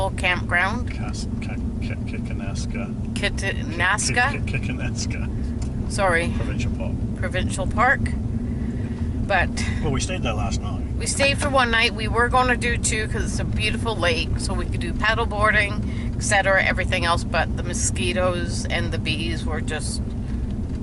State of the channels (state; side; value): identical; both; correlation 1.00